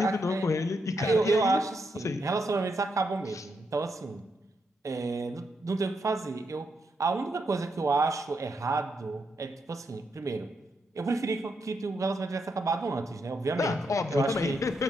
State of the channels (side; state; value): both; normal; correlation 0.81